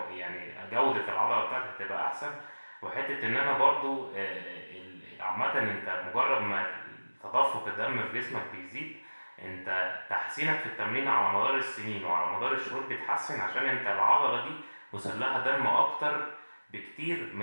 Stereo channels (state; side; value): inverted; both; correlation -1.00